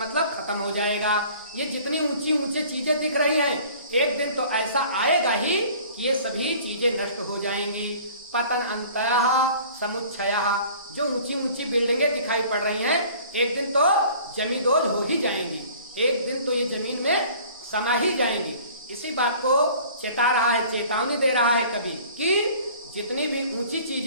खत्म हो जाएगा। ये जितनी ऊंची ऊंची चीजें दिख रही हैं, एक दिन तो ऐसा आएगा ही कि ये सभी चीजें नष्ट हो जाएंगी। पतन अंतः समुच्छयः, जो ऊंची ऊंची बिल्डिंगें दिखाई पड़ रही हैं, एक दिन तो जमींदोज हो ही जाएंगी, एक दिन तो ये जमीन में समा ही जाएंगी। इसी बात को चेता रहा है, चेतावनी दे रहा है कवि कि जितनी भी ऊंची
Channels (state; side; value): inverted; both; correlation -0.49